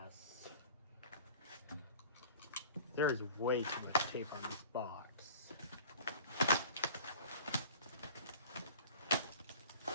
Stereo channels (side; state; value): both; inverted; correlation -0.43